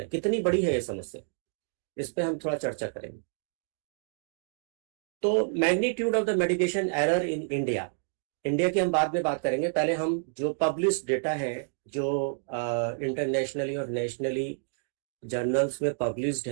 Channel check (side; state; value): left; silent; digital silence